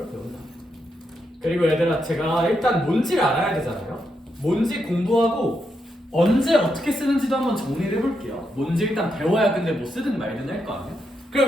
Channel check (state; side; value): normal; both; correlation 0.82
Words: 배운다. 그리고 얘들아 제가 일단 뭔지를 알아야 되잖아요. 뭔지 공부하고 언제 어떻게 쓰는지도 한번 정리를 해볼게요. 뭔지 일단 배워야 근데 뭐 쓰든 말든 할 거 아니야?